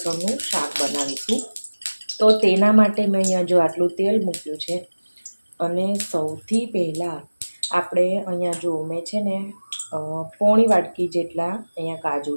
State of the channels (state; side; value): inverted; both; correlation -1.00